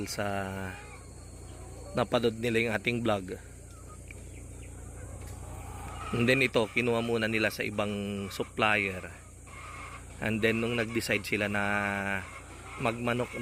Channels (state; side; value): identical; both; correlation 1.00